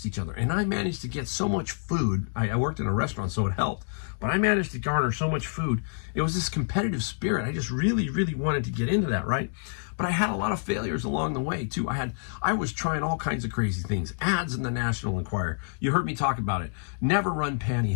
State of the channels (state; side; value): silent; right; digital silence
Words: each other. And I managed to get so much food. I worked in a restaurant, so it helped. But I managed to garner so much food. It was this competitive spirit. I just really, really wanted to get into that, right? But I had a lot of failures along the way too. I was trying all kinds of crazy things. Ads in the National Enquirer. You heard me talk about it. Never run